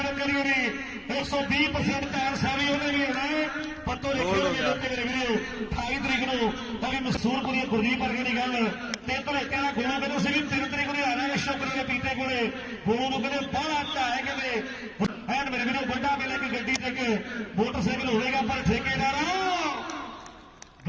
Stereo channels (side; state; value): both; identical; correlation 1.00